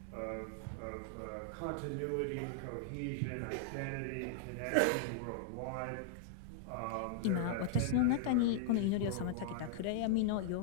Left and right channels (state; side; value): different; both; correlation -0.01